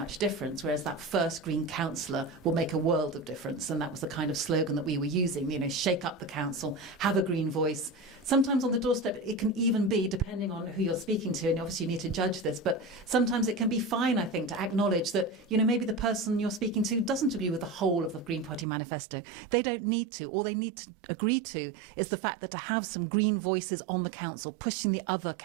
difference, whereas that first Green councillor will make a world of difference. And that was the kind of slogan that we were using, shake up the council, have a Green voice. Sometimes on the doorstep, it can even be, depending on who you're speaking to, and obviously you need to judge this, but sometimes it can be fine, I think, to acknowledge that, maybe the person you're speaking to doesn't agree with the whole of the Green Party manifesto. They don't need to. All they need to agree to is the fact that to have some Green voices on the council, pushing the other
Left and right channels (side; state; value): left; drops out; at 18.7 s